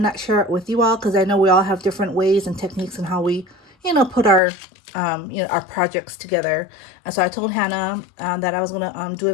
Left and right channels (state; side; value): drops out; right; at 4.4 s